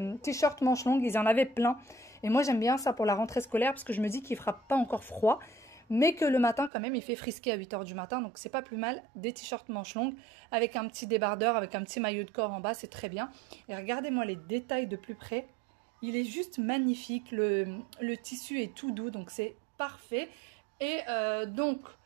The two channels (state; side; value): drops out; left; at 6.7 s